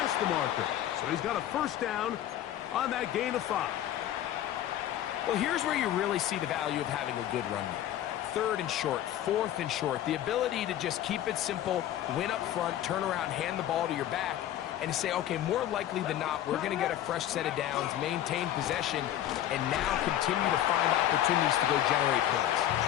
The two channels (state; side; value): quieter; right; 12.1 dB